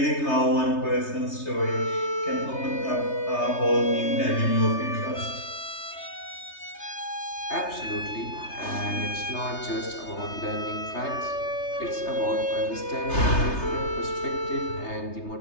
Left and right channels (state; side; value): late; right; 3.3 ms